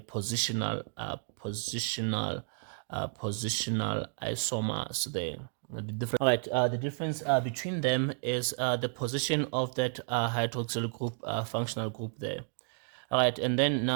positional isomers there. All right, the difference between them is the position of that hydroxyl group, functional group there. All right, and then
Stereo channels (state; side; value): silent; left; 56 dB below the other